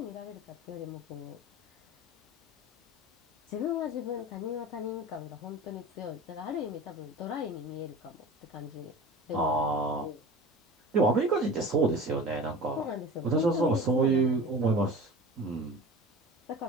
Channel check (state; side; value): normal; both; correlation 0.36